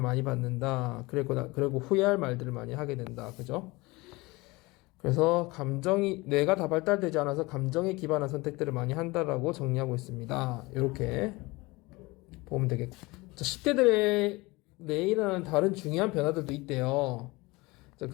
많이 받는다. 그리고 후회할 말들을 많이 하게 된다. 그죠? 그래서 뇌가 다 발달되지 않아서 감정에 기반한 선택들을 많이 한다라고 정리하고 있습니다. 이렇게 보면 되겠고. 자, 10대들의 뇌에 일어나는 다른 중요한 변화들도 있대요. 자,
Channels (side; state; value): right; quieter; 23.0 dB